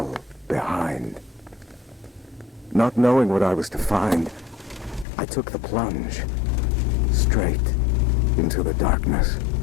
behind. Not knowing what I was to find, I took the plunge, straight into the darkness.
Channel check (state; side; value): drops out; right; at 5.1 s